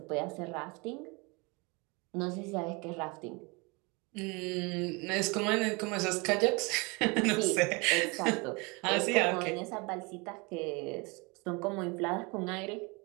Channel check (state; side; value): quieter; left; 28.3 dB